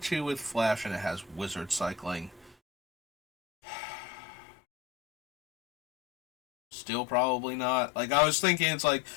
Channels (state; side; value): drops out; right; at 2.6 s